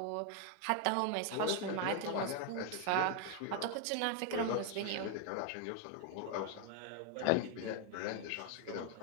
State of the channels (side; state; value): both; different; correlation 0.00